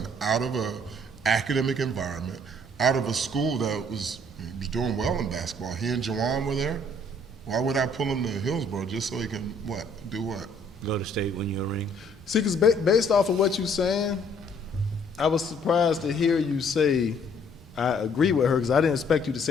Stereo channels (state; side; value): normal; both; correlation 0.61